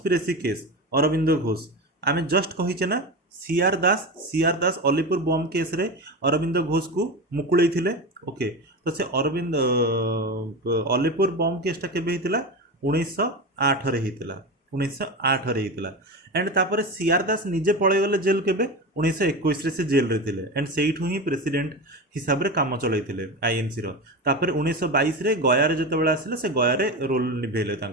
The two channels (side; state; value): both; normal; correlation 0.23